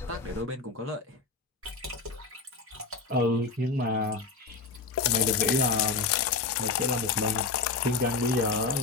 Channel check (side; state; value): right; quieter; 4.1 dB